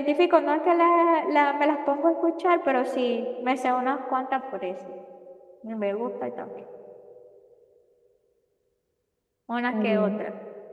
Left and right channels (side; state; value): both; identical; correlation 1.00